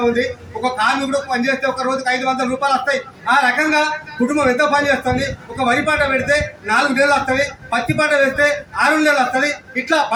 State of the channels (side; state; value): both; identical; correlation 1.00